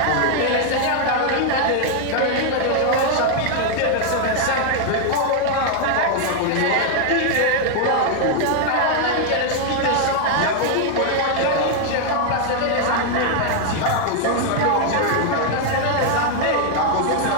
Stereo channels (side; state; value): both; different; correlation 0.00